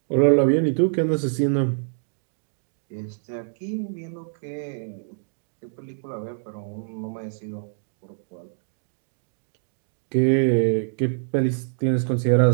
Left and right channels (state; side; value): silent; left; digital silence